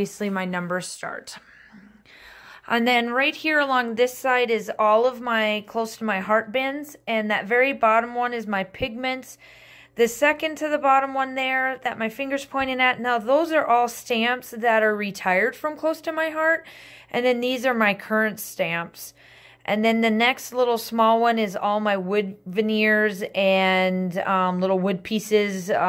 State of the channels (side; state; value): both; identical; correlation 1.00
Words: my numbers start. And then right here along this side is all of my close to my heart bins. And that very bottom one is my pigments. The second to the bottom one there that my finger's pointing at, now those are all stamps that are retired from close to my heart. And then these are my current stamps. And then the next little small one is all my wood veneers and little wood pieces,